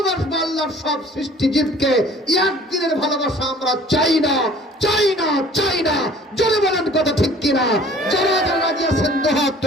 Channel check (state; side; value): normal; both; correlation 0.50